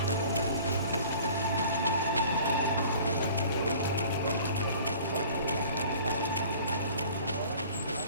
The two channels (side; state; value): both; inverted; correlation -0.47